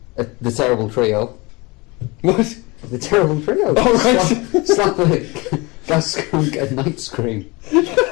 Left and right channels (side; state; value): right; quieter; 25.2 dB